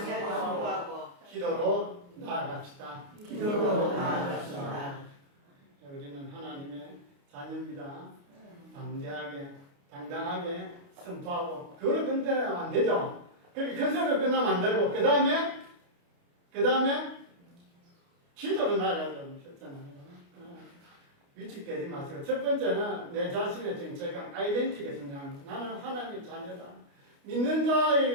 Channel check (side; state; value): left; late; 29 ms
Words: 기도로 나아갑시다. 우리는 하나님의 자녀입니다. 담대하게, 당당하게 선포하고 그걸 끝내면 안 되죠. 그렇게 큰 소리로 끝나면 안 되고 그 다음에 기도로 나아가려고 하셨잖아요. 위축되지 마시고 첫 번째는 내 자신의 정체감, 아이덴티티가 중요합니다. 나는 하나님의 자녀다. 믿는